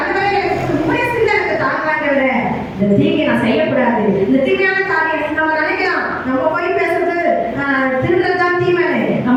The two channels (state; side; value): identical; both; correlation 1.00